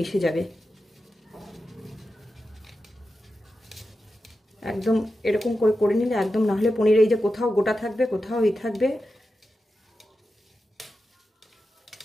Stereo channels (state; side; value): normal; both; correlation 0.91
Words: যাবে। একদম এরকম করে করে নিলে একদম, না হলে পনির এই যে কোথাও গোটা থাকবে, কোথাও ই থাকবে।